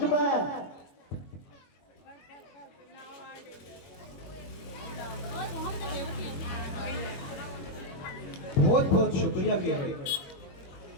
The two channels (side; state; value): right; late; 22 ms